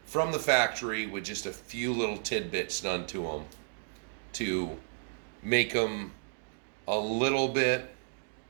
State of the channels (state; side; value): silent; left; digital silence